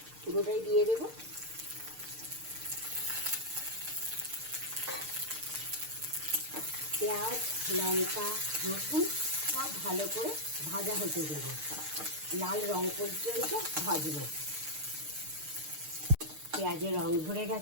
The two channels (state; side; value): late; left; 6.6 ms